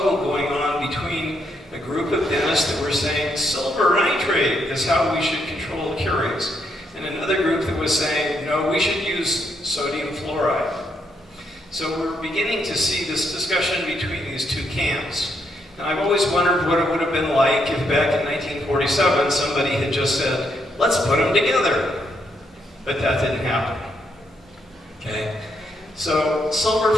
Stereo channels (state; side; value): normal; both; correlation 0.76